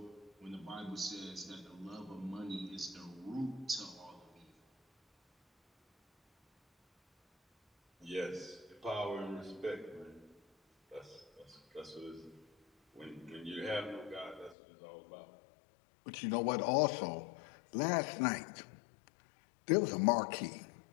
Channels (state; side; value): drops out; right; at 14.6 s